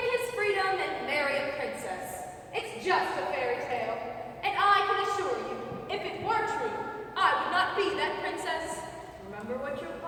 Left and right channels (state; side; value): identical; both; correlation 1.00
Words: his freedom, and marry a princess. It's just a fairy tale. And I can assure you, if it were true, I would not be that princess. Remember what your